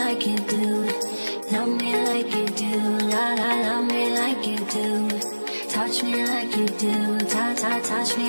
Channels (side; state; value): both; inverted; correlation -1.00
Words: you do. Love me like you do, la la, love me like you do. Touch me like you do, touch